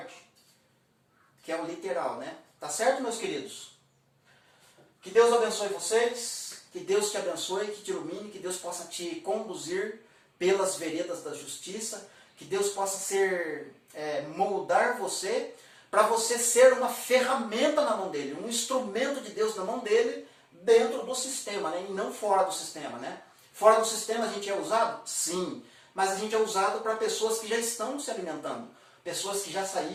que é o literal, né? Tá certo, meus queridos? Que Deus abençoe vocês, que Deus te abençoe, que te ilumine, que Deus possa te conduzir pelas veredas da justiça, que Deus possa moldar você, para você ser uma ferramenta na mão dele, um instrumento de Deus na mão dele, dentro do sistema, né? E não fora do sistema, né? Fora do sistema a gente é usado? Sim, mas a gente é usado para pessoas que já estão se alimentando, pessoas que já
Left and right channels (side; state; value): both; identical; correlation 1.00